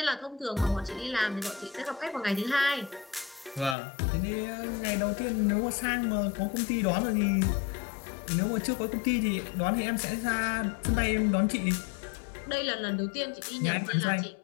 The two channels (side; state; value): right; drops out; at 3.8 s